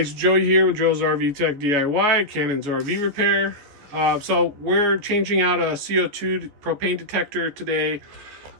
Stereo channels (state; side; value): late; left; 14 ms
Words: Joey here with Joe's RV Tech DIY, Cannon's RV Repair. So we're changing out a CO2 propane detector today.